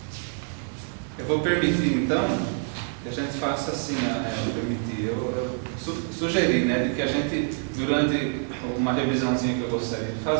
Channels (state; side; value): silent; left; 55 dB below the other